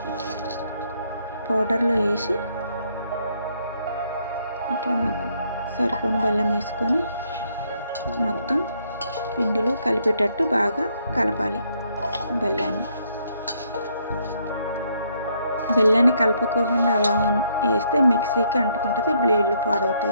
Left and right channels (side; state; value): both; inverted; correlation -0.71